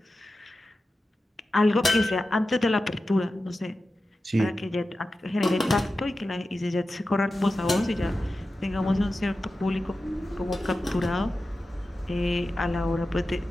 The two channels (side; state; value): both; normal; correlation 0.93